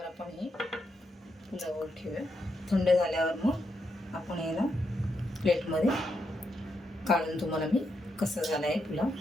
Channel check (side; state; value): both; normal; correlation 0.82